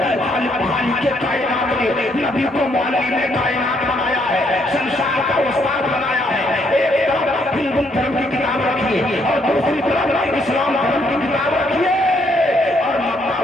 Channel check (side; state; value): both; normal; correlation 0.71